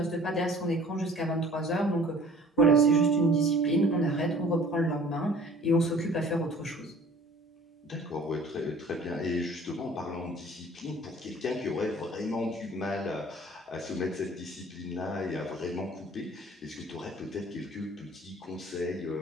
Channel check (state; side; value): normal; both; correlation 0.50